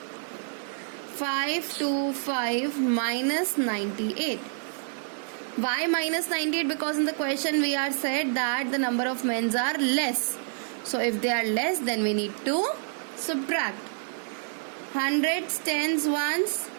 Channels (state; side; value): silent; left; digital silence